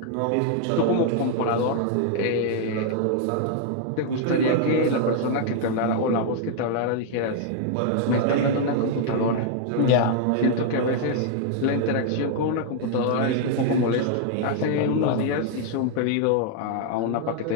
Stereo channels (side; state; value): both; different; correlation 0.00